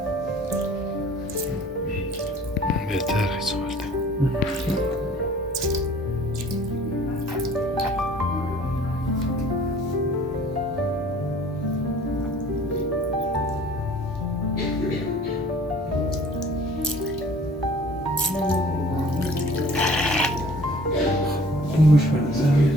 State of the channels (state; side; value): normal; both; correlation 0.50